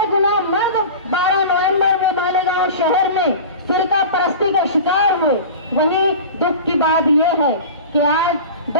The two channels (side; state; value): both; inverted; correlation -0.34